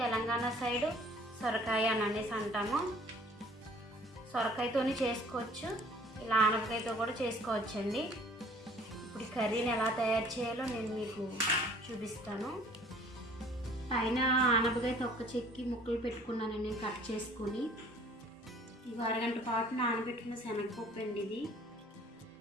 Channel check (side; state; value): both; normal; correlation 0.54